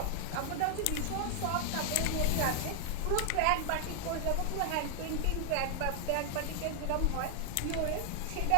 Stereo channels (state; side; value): different; both; correlation 0.00